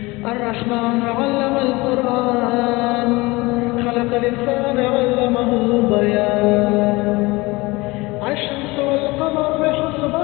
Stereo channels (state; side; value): quieter; right; 22.6 dB